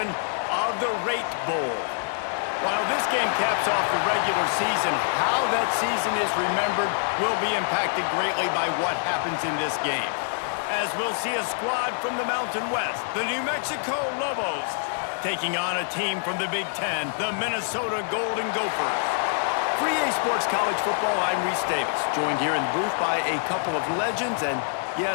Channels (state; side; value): silent; right; digital silence